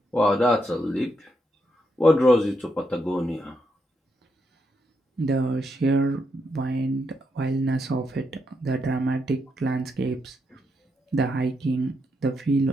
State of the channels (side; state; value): both; normal; correlation 0.81